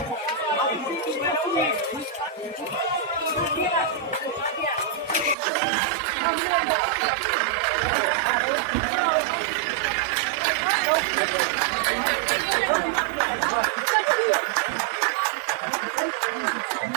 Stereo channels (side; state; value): left; drops out; at 5.4 s